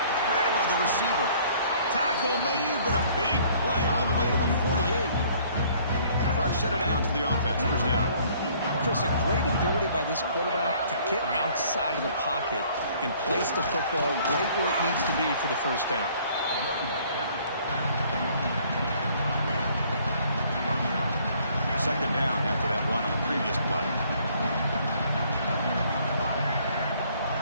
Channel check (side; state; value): both; inverted; correlation -0.59